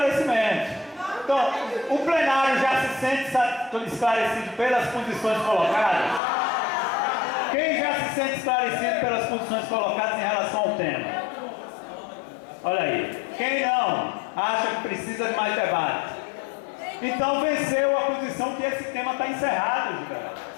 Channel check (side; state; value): right; drops out; at 6.2 s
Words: Então, o plenário já se sente esclarecido pelas posições colocadas? Quem já se sente esclarecido pelas posições colocadas em relação ao tema? Olha aí. Quem não acha que precisa de mais debate? Então venceu a posição que esse tema está encerrado, Giveraldo.